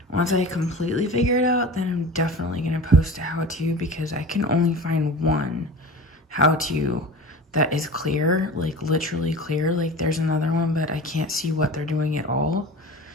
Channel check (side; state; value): both; normal; correlation 0.35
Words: once I completely figure it out, then I'm definitely gonna post a how-to, because I can only find one how-to that is clear, like literally clear. Like there's another one, but I can't see what they're doing at all,